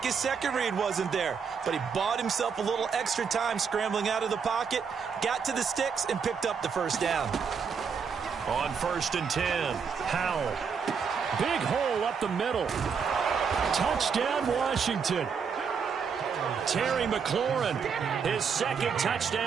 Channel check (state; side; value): quieter; left; 6.2 dB